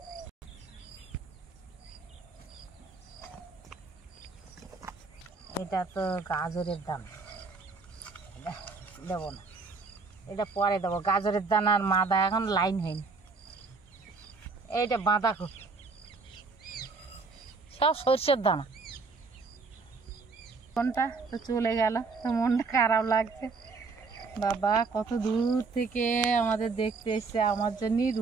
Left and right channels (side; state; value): left; quieter; 4.3 dB